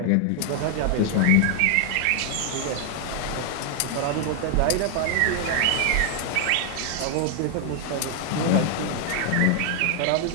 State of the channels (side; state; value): both; different; correlation 0.00